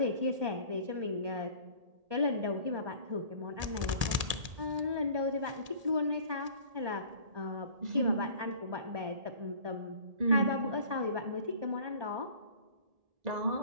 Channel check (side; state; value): left; late; 1.8 ms